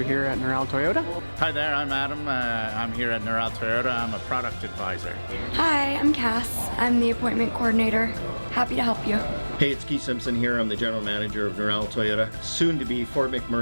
here at Noral Toyota. Hi there, I'm Adam. I'm here at Noral Toyota. I'm a product advisor. Hi, I'm Cass. I'm the appointment coordinator. Happy to help you. Hey, it's Keith Simpson here. I'm the general manager of Noral Toyota, soon to be Fort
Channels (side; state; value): both; inverted; correlation -1.00